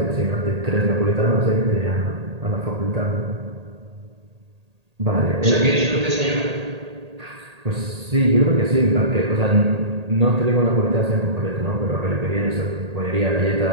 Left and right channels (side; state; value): left; late; 1.8 ms